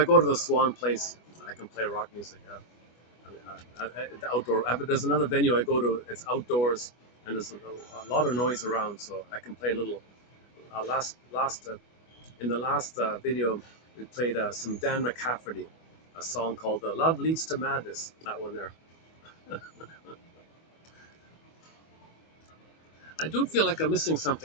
go to the Swan place, I can play rock music. The outdoor. There's another venue I go to. It's outdoors, and there's a lot of noise around, so I can play a little. Last In the last video, we played some Dan McCafferty, a song called "Love Leads to Madness." That one there. I do feel like I'm missing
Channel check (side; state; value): right; late; 25 ms